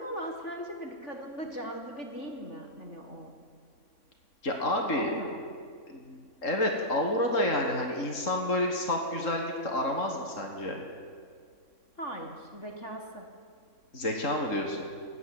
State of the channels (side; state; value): right; late; 3.6 ms